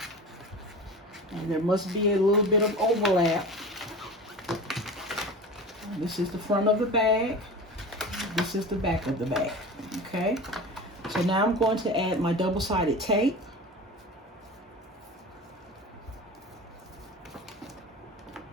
there must be a little bit of overlap. This is the front of the bag. This is the back of the bag. Okay, so now I'm going to add my double-sided tape.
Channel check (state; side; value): normal; both; correlation 0.33